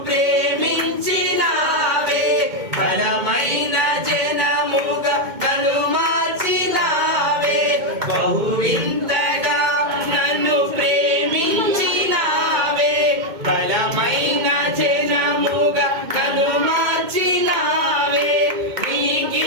ప్రేమించినావే, బలమైన జనముగా నన్ను మార్చినావే. బహువింతగా నన్ను ప్రేమించినావే, బలమైన జనముగా నన్ను మార్చినావే. నీ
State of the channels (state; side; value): late; left; 2.2 ms